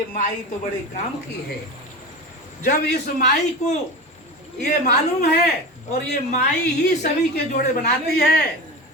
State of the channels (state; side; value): normal; both; correlation 0.28